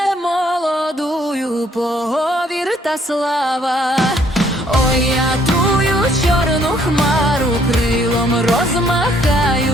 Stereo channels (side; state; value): both; normal; correlation 0.65